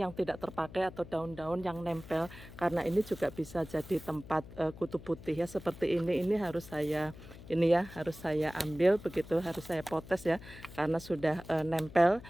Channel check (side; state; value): left; noise; hum, 16 dB below the sound